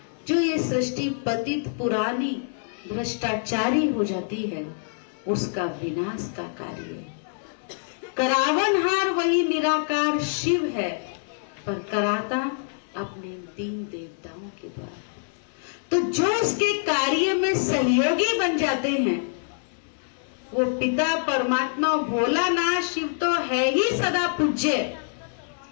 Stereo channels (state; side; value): silent; right; digital silence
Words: जो ये सृष्टि पतित पुरानी भ्रष्टाचारी हो जाती है, उसका विनाश का कार्य। करावनहार वही निराकार शिव है, पर कराता अपने 3 देवताओं के द्वारा। तो जो इसके कार्य में सहयोगी बन जाते हैं, वो पिता परमात्मा भोलानाथ शिव तो है ही सदा पूज्य।